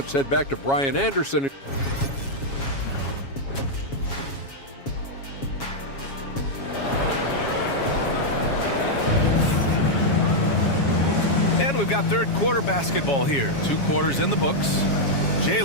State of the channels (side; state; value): right; late; 7.3 ms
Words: head back to Brian Anderson. And we've got third quarter basketball here. 2 quarters in the books.